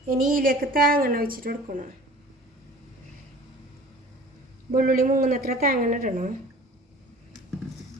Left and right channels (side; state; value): both; normal; correlation 0.45